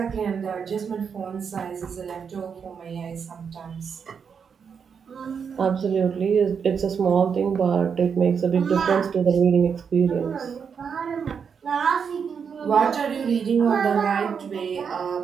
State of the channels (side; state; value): left; quieter; 6.6 dB